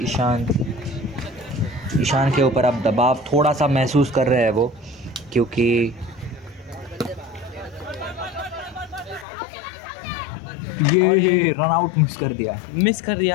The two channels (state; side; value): drops out; right; at 9.2 s